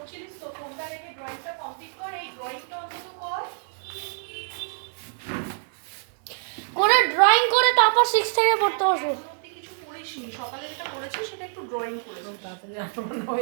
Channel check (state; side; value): silent; left; digital silence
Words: তো, ফোনটা রেখে ড্রয়িংটা কমপ্লিট কর, এই ড্রয়িংটা অন্তত কর করে ড্রয়িং করে তারপর 6 থেকে পড়তে বসো। কিছু করিসনি, সকালে যেটা করেছিস সেটা একটু ড্রয়িং করে তাড়াতাড়ি মনে